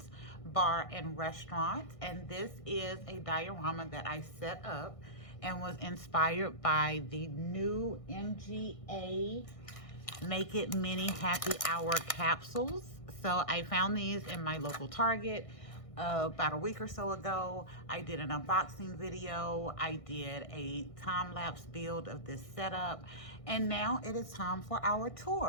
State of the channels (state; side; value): late; right; 1.6 ms